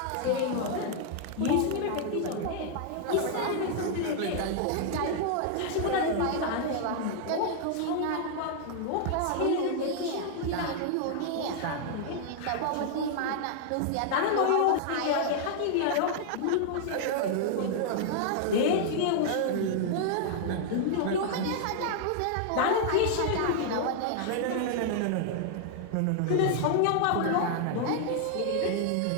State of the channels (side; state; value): both; different; correlation 0.00